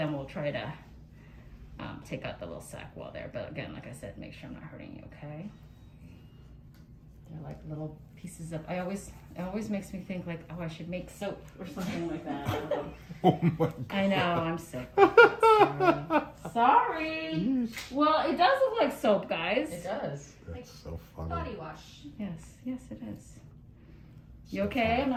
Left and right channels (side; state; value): both; identical; correlation 1.00